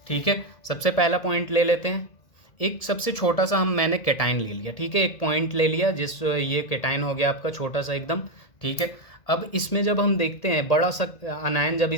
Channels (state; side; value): late; right; 1.7 ms